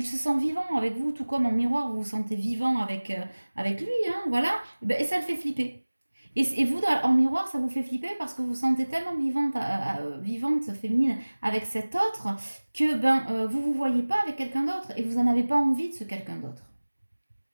se sent vivant avec vous, tout comme en miroir, vous vous sentez vivant avec lui, hein, voilà. Et ça le fait flipper. Et vous, en miroir, ça vous fait flipper parce que vous vous sentez tellement vivante, féminine avec cet autre que vous voyez pas avec quelqu'un d'autre et vous n'en avez pas envie de ce quelqu'un d'autre.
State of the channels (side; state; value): both; inverted; correlation -1.00